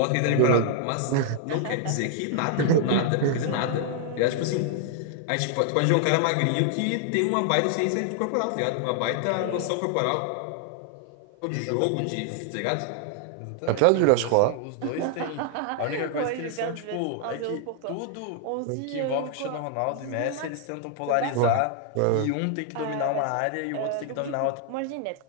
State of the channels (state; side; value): different; both; correlation 0.00